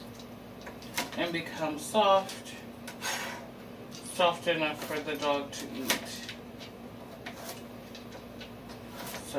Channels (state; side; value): identical; both; correlation 1.00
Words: and become soft enough for the dog to eat.